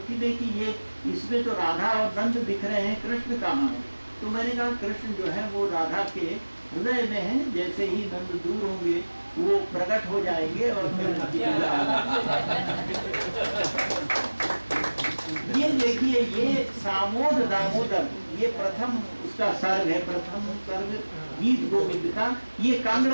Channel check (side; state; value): both; inverted; correlation -1.00